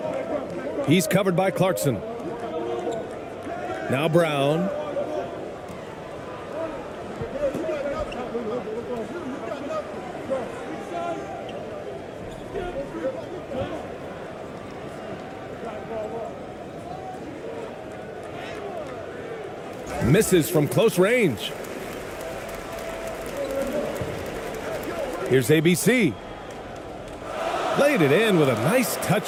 He's covered by Clarkson. Now Brown. Misses from close range. Here's ABC. Laid it in with a nice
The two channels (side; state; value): both; identical; correlation 1.00